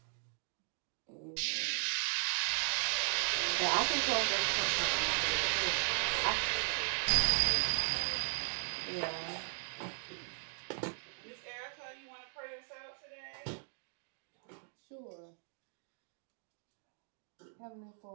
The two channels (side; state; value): left; silent; 53 dB below the other